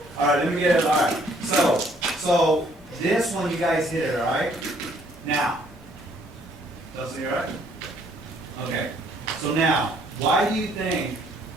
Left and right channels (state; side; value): normal; both; correlation 0.64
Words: all right, let me get it, all right. So this one, you guys hit it, all right? Now, Dustin, you all right? Okay, so now, why do you think